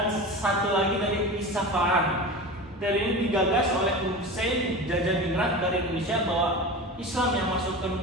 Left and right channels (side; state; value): both; normal; correlation 0.30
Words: satu lagi dari Isfahan. Teori ini digagas oleh Hussein Jajadiningrat dari Indonesia bahwa Islam yang masuk ke